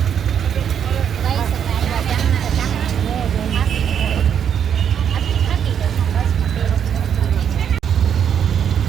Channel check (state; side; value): quieter; left; 8.4 dB